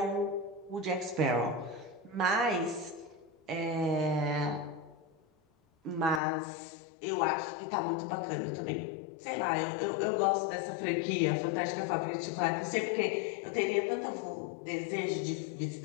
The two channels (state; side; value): drops out; right; at 6.2 s